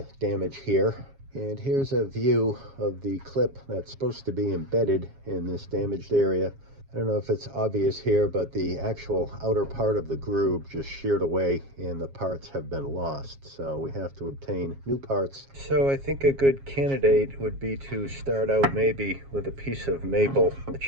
damage here. And here's a view of the clip that's supposed to be embedded in this damaged area. I don't know if it's obvious here, but the actual outer part of the groove just sheared away and the parts have been lost. So we have to obtain new parts. So I think a good candidate would be to start out maybe with a piece of maple. The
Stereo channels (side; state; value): left; late; 7.3 ms